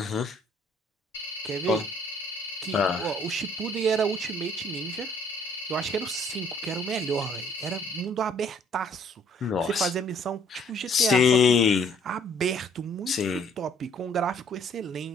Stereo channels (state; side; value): normal; both; correlation 0.61